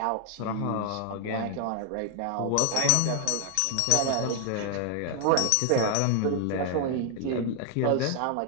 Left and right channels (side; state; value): both; different; correlation 0.00